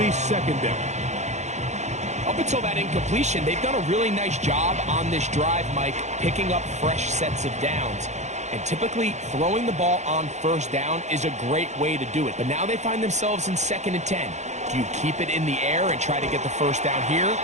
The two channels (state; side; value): late; left; 0.33 ms